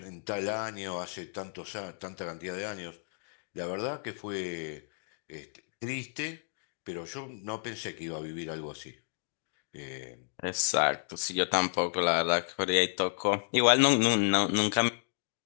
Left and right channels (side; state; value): right; silent; digital silence